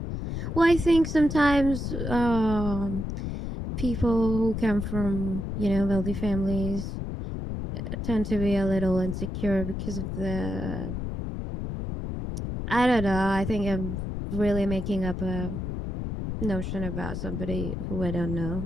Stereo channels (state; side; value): noise; left; rumble, 4 dB below the sound